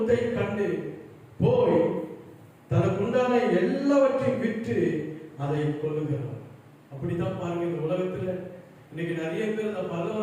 கண்டு போய் தனக்குண்டான எல்லாவற்றையும் விற்று அதை கொள்ளுகிறான். அப்படித்தான் பாருங்க, இந்த உலகத்துல இன்னைக்கு நிறைய பேர் அந்த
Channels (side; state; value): both; identical; correlation 1.00